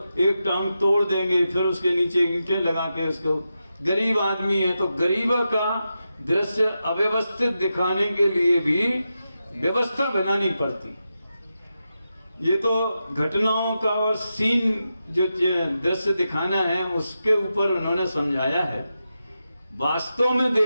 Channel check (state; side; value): inverted; both; correlation -0.89